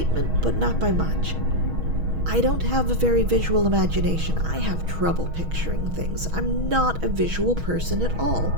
but not by much. I don't have a very visual imagination. I have trouble picturing things. I'm not a visual person at all.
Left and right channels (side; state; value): left; late; 6.2 ms